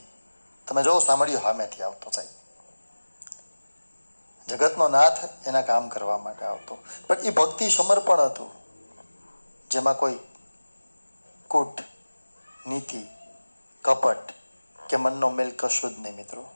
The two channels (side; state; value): both; inverted; correlation -1.00